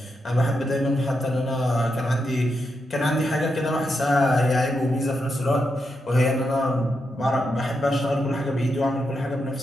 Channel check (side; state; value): both; normal; correlation 0.84